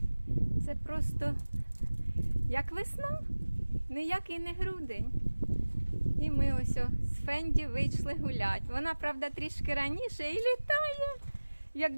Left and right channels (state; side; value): inverted; both; correlation -1.00